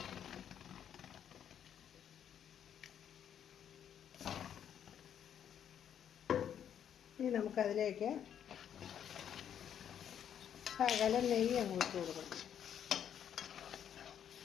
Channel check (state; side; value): quieter; right; 9.2 dB